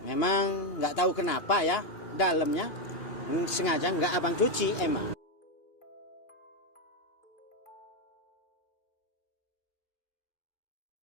memang nggak tahu kenapa ya, dalamnya sengaja nggak abang cuci emang.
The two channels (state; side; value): late; right; 2.8 ms